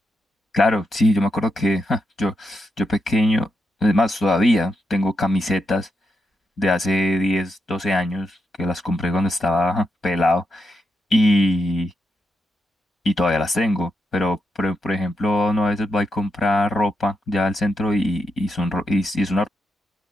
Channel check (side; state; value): both; normal; correlation 0.84